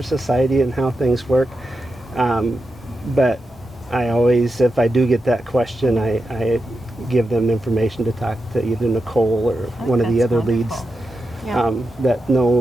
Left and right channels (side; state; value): both; normal; correlation 0.89